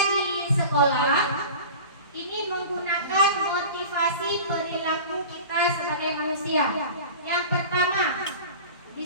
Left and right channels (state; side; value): inverted; both; correlation -0.37